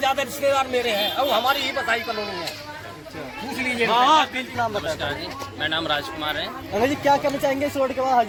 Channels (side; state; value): both; identical; correlation 1.00